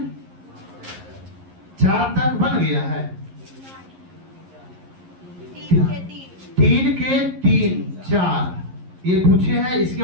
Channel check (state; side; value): late; left; 11 ms